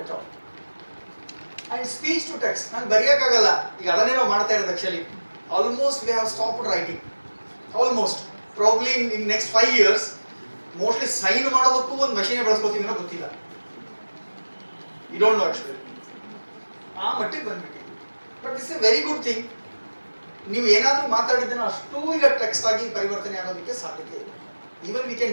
at all. And speech to text, ನಾನು ಬರೆಯೋಕ್ಕಾಗಲ್ಲ, ಈಗ ಅದನ್ನೇ ನಾವು ಮಾಡ್ತಾ ಇರೋದು. Actually almost we have stopped writing. Almost probably in next 5 years mostly sign ಮಾಡೋದಕ್ಕೂ ಒಂದು ಮಷೀನ್ ಬಳಸ್ಕೋತೀವಿ ಅನ್ನೋ ಗೊತ್ತಿಲ್ಲ. You don't know actually. ಆ ಮಟ್ಟಿಗೆ ಬಂದ್ಬಿಟ್ಟಿದೆ. But it's a very good thing. ನೀವು ಏನಾದರೂ ಮಾತಾಡಿದ್ದನ್ನು ಅಷ್ಟೂ ಈಗ ಟೆಕ್ಸ್ಟ್ ಆಗಿ ಪರಿವರ್ತನೆ ಆಗೋದಕ್ಕೆ ಸಾಧ್ಯತೆ ಇದೆ. Even we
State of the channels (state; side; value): inverted; both; correlation -1.00